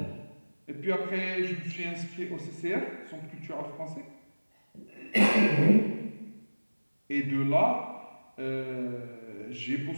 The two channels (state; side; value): inverted; both; correlation -1.00